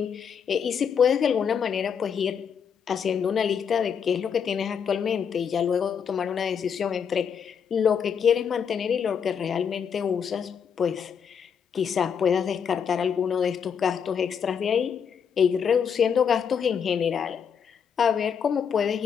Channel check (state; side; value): quieter; right; 7.2 dB